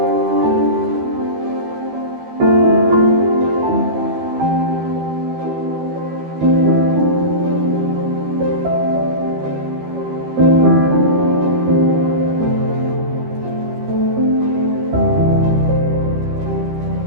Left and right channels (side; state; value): left; late; 13 ms